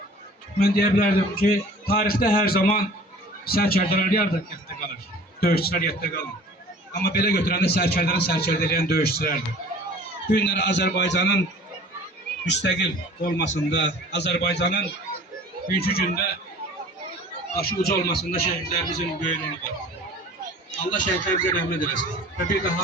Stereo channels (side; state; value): both; normal; correlation 0.46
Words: Ben diyebilirdim ki tarihte her zaman sərkərdələr yadda kalır, döyüşçülər yadda kalır. Ama belə götürəndə sərkərdəni sərkərdələyən döyüşçülərdir. Bu günləri Azerbaycan'ın müstəqil olmasında, Azerbaycan'ın bugünkü gündə başı uca olmasında şəhidlərimizin böyük rolu var. Allah şəhidlərimizə rəhmət eləsin və bir də